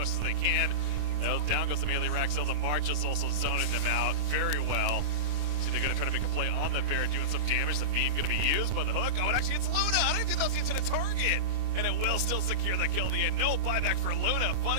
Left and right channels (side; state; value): left; late; 27 ms